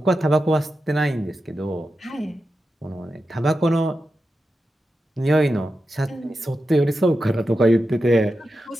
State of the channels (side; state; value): both; normal; correlation 0.90